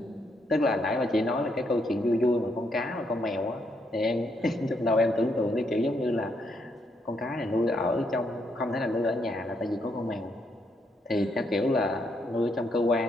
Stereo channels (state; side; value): normal; both; correlation 0.76